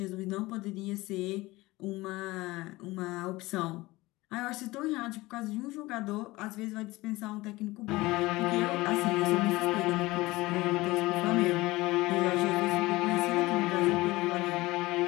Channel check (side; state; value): right; quieter; 20.1 dB